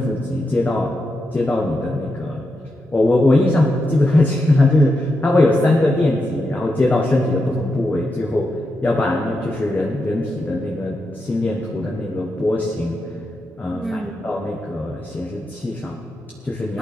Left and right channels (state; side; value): normal; both; correlation 0.86